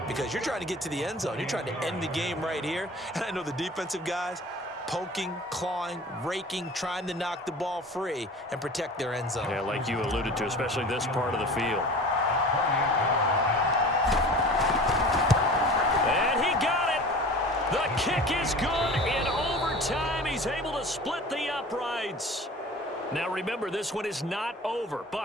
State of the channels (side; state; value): both; normal; correlation 0.39